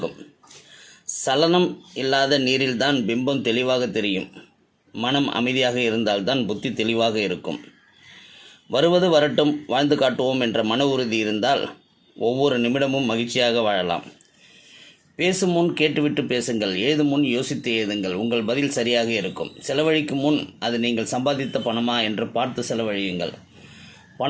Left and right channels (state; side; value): identical; both; correlation 1.00